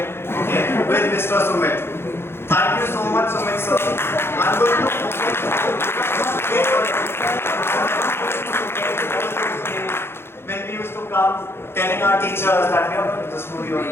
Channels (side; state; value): right; late; 0.11 ms